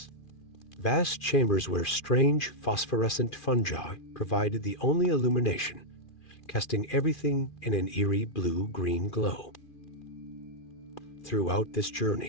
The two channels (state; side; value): late; right; 2.4 ms